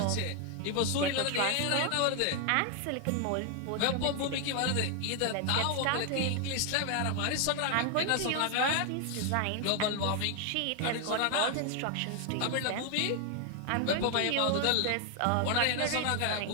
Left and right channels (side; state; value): both; different; correlation 0.00